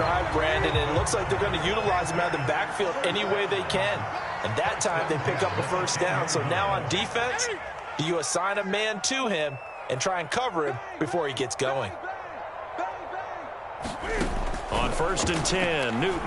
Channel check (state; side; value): identical; both; correlation 1.00